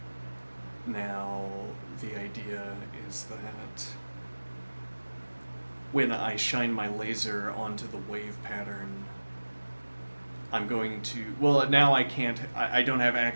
now the idea is that when I shine my laser onto the wave pattern, I'm going to, well, now I don't have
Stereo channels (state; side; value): inverted; both; correlation -1.00